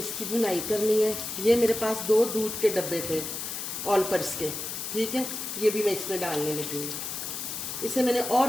भुनाई करनी है। ये मेरे पास 2 दूध के डब्बे थे ऑल पर्स के। ठीक है, ये भी मैं इसमें डालने लगी हूँ। इसे मैंने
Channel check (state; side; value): noise; left; hiss, 5 dB below the sound